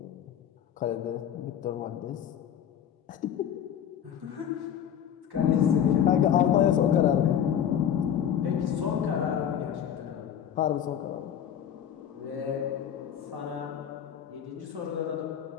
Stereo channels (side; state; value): right; quieter; 9.4 dB